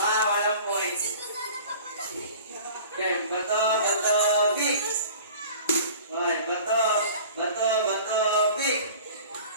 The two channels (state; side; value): inverted; both; correlation -0.43